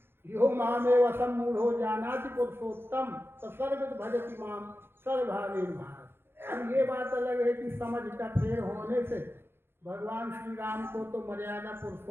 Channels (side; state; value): left; late; 0.11 ms